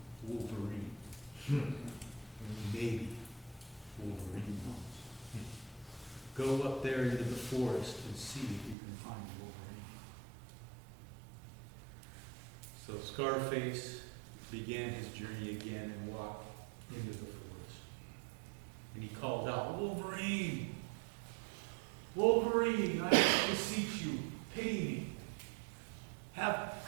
Wolverine. Maybe Wolverine knows. Go up there into the forest and see if you can find Wolverine." So Scarface began his journey again and walked into the forest. And he called out, "Wolverine! Wolverine, I beseech you, pity me. Have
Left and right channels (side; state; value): left; drops out; at 8.8 s